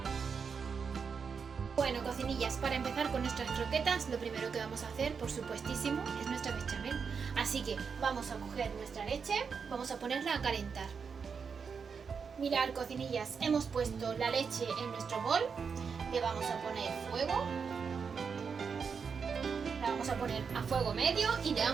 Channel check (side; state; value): left; quieter; 5.9 dB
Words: Bueno, cocinillas, para empezar con nuestras croquetas, lo primero que vamos a hacer, por supuestísimo, es nuestra bechamel. Así que vamos a coger nuestra leche, vamos a ponerla a calentar. Mirad, cocinillas, hemos puesto la leche en nuestro bol, le vamos a poner fuego, la vamos a poner a fuego medio y le